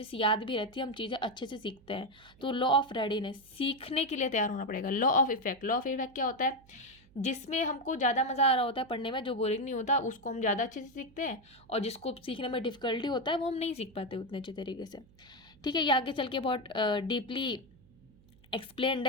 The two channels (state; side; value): noise; right; hum, 27 dB below the sound